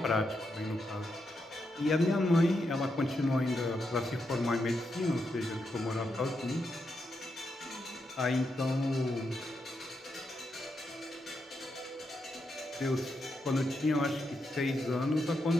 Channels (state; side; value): normal; both; correlation 0.83